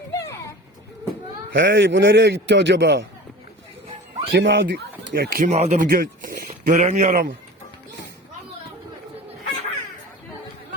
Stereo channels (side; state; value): both; normal; correlation 0.38